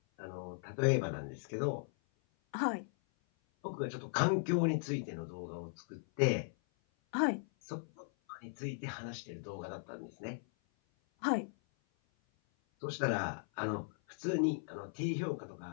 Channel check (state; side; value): silent; right; 53 dB below the other